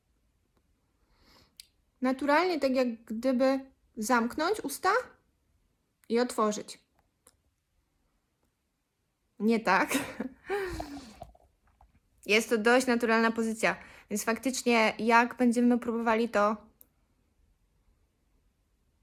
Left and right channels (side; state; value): both; identical; correlation 1.00